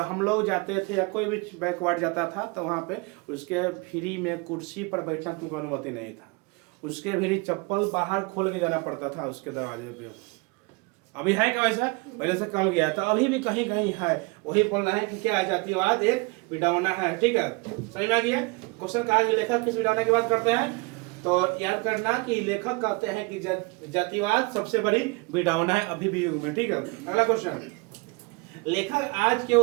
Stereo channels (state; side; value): quieter; left; 28.3 dB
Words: हम लोग जाते थे या कोई भी बैकवर्ड जाता था तो वहाँ पे उसके फ्री में कुर्सी पर बैठना तुमको अनुमति नहीं था, उसके भी चप्पल बाहर खोल के जाना पड़ता था उसके दरवाजे पे। अभी है क्या वैसा, पहले से कम गया था, अभी भी कहीं कहीं है। वही बोल रहा है कि क्या जातिवाद एक विडंबना है। ठीक है, समझ में आ गया। क्वेश्चन कहा कि लेखक किस विडंबना की बात करते हैं, तो याद करना कि लेखक कहते हैं कि जातिवाद सबसे बड़ी विडंबना है अभी भी युग में। ठीक है, अगला क्वेश्चन, लेखक आज के